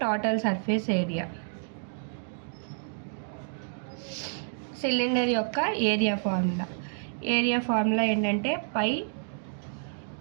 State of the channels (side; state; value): left; silent; digital silence